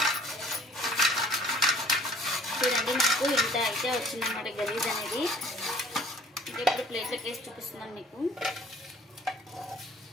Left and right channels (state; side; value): normal; both; correlation 0.53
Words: చూడండి నాకు ఇంత అయితే వచ్చిందన్నమాట గలీజ్ అనేది. ఇంకా ఇప్పుడు ప్లేట్లోకి వేసి చూపిస్తున్నాను మీకు.